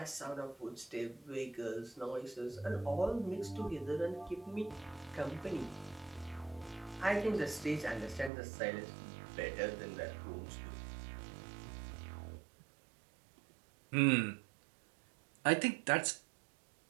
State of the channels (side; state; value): left; drops out; at 8.3 s